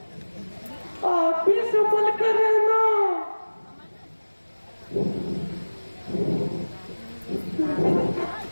आप भी संभल कर रहना।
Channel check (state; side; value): inverted; both; correlation -1.00